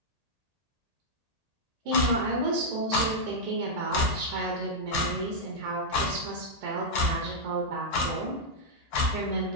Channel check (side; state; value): left; late; 1.8 ms